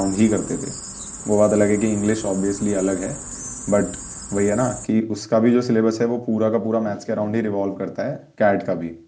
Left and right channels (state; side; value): identical; both; correlation 1.00